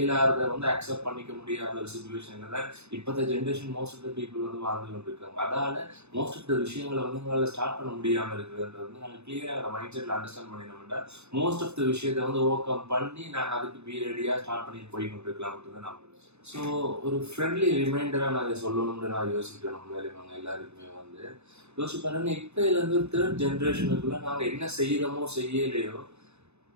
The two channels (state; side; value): late; left; 0.81 ms